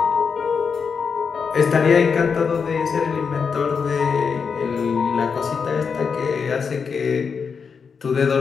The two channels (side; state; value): right; quieter; 5.8 dB